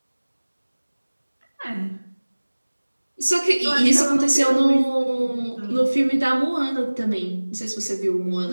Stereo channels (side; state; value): both; inverted; correlation -1.00